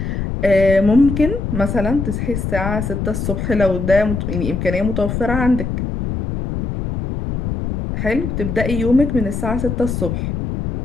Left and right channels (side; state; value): left; noise; rumble, 3 dB below the sound